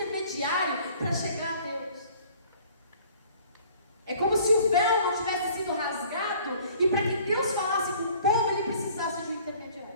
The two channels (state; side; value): inverted; both; correlation -0.53